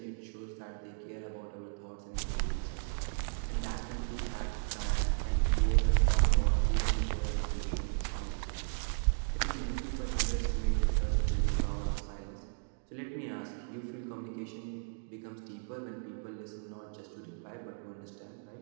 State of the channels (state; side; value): silent; left; digital silence